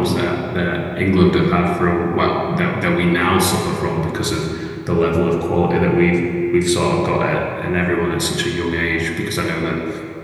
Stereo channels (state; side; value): identical; both; correlation 1.00